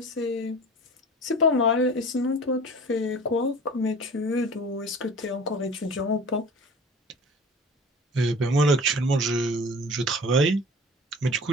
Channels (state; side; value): normal; both; correlation 0.41